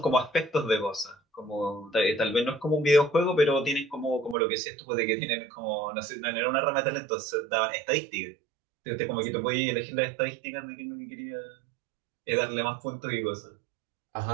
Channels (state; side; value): drops out; left; at 4.4 s